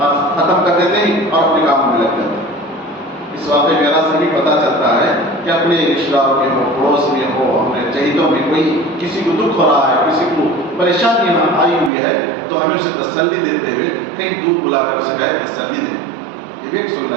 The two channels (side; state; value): left; drops out; at 11.9 s